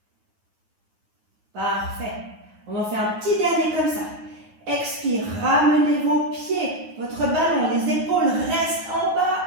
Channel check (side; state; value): left; late; 9.7 ms